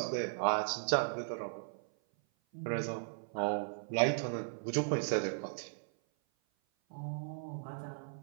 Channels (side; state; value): left; silent; 53 dB below the other